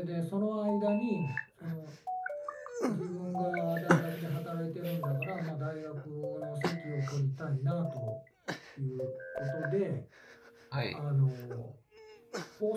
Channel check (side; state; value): both; identical; correlation 1.00